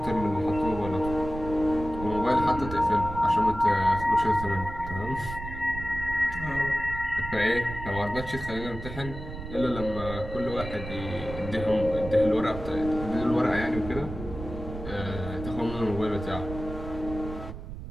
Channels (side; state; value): right; noise; rumble, 9 dB below the sound